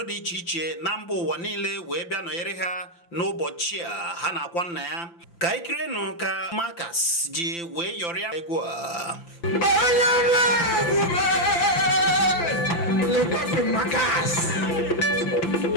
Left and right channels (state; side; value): late; right; 5.9 ms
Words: dị iche iche na mba ụwa niile wee bịa nọnyere ha n'ụbọchị a ha na-akwa nna ya. Ka ikirenụ ka Marcus ji wee yọrịa egwu a. Le pape Marcus,